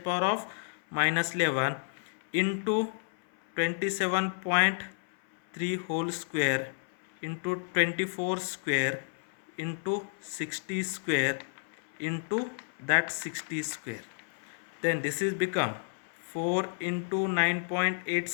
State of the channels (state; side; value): silent; right; 57 dB below the other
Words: power of minus 11 into 27.3 whole square into 24 square into 60 square into that 60 square. Then this is become 4 into